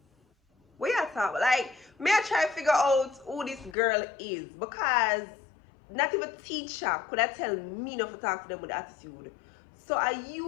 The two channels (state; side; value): drops out; right; at 3.8 s